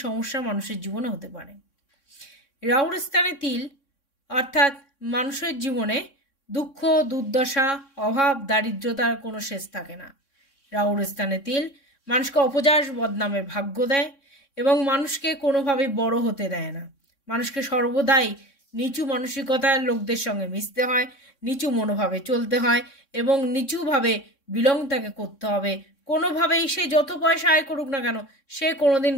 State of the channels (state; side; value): late; right; 3.6 ms